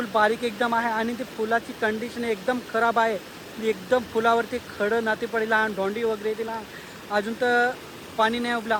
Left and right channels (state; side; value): identical; both; correlation 1.00